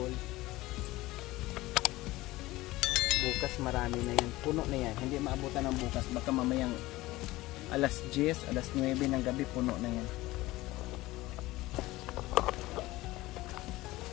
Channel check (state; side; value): quieter; right; 18.7 dB